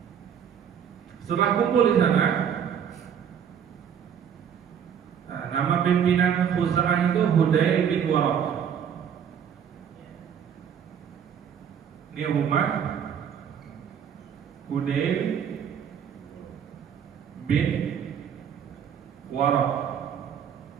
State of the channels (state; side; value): quieter; left; 8.2 dB